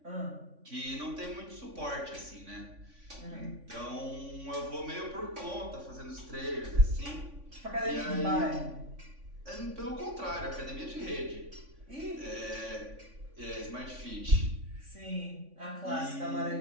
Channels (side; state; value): left; late; 3.5 ms